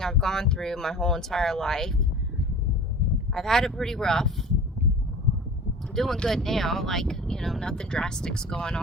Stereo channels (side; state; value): both; normal; correlation 0.39